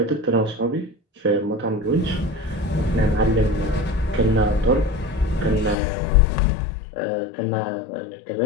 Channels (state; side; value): drops out; right; at 5.8 s